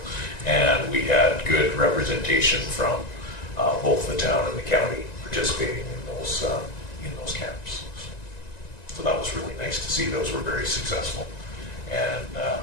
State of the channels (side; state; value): right; late; 1.9 ms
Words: And we had good representation from both the town and the county participating in those camps. So that was really nice to see. Those were very successful. And